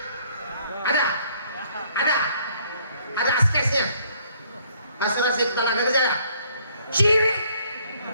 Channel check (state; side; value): inverted; both; correlation -0.64